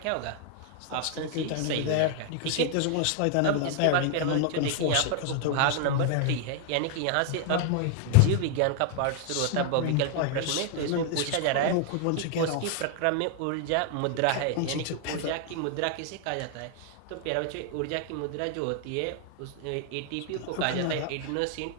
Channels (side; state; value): both; different; correlation 0.00